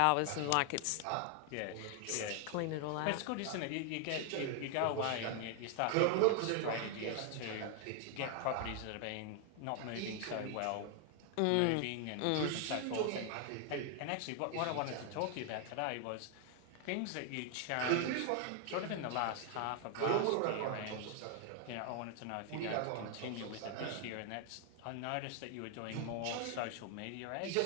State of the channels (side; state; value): both; different; correlation 0.00